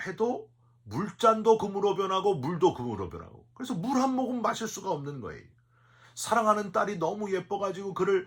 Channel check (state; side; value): identical; both; correlation 1.00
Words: 해도 물잔도 금으로 변하고 물도 금으로 변하고, 그래서 물 한 모금 마실 수가 없는 거예요. 사랑하는 딸이 너무 예뻐가지고